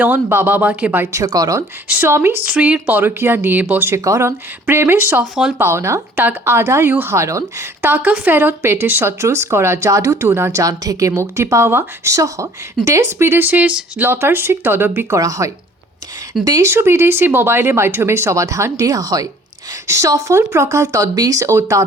বাবা মাকে বাধ্যকরণ, স্বামী স্ত্রীর পরকীয়া নিয়ে বশীকরণ, প্রেমের সফল পাওনা তাক আদায়ু হারণ, টাকা ফেরত পেটে শত্রুস করা জাদু টুনা জান থেকে মুক্তি পাওয়া সহ দেশ বিদেশের লতার্সিক তদব্বি করা হয়। দেশ ও বিদেশি মোবাইলের মাধ্যমে সমাধান দেওয়া হয়। সফল প্রকাল তদবিজ ও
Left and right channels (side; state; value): both; normal; correlation 0.53